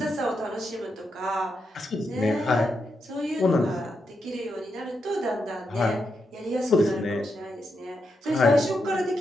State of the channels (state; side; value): normal; both; correlation 0.84